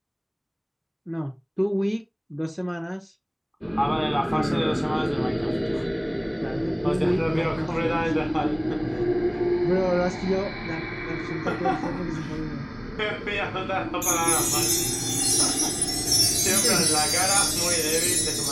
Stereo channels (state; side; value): identical; both; correlation 1.00